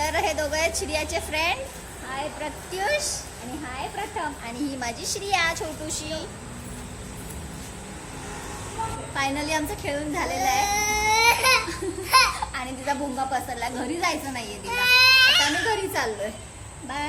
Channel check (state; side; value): identical; both; correlation 1.00